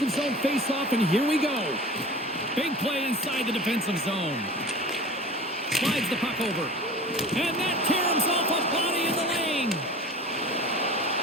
zone faceoff, and here we go. Big play inside the defensive zone. Slides the puck over. And that caroms off a body in the lane.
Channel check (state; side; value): normal; both; correlation 0.39